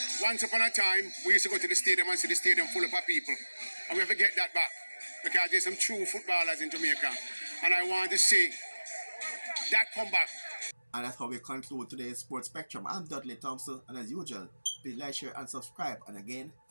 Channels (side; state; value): both; inverted; correlation -1.00